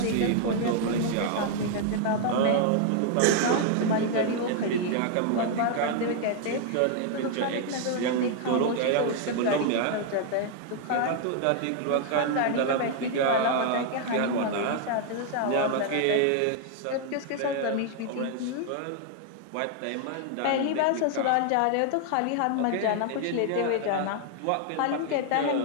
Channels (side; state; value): both; different; correlation 0.00